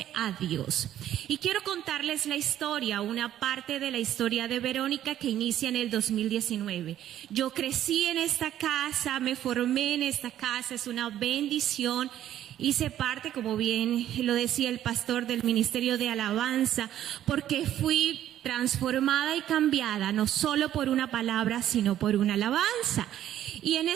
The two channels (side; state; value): left; quieter; 11.8 dB